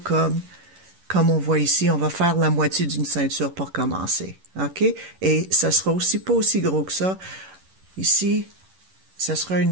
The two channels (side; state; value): left; late; 11 ms